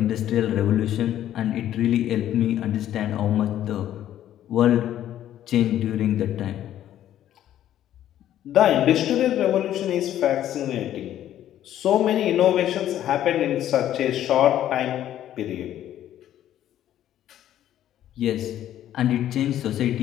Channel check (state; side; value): quieter; right; 11.8 dB